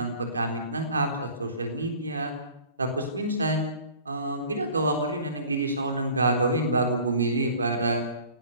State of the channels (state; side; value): inverted; both; correlation -0.47